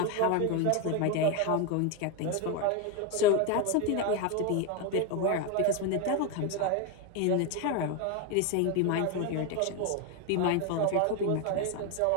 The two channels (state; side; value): different; both; correlation 0.02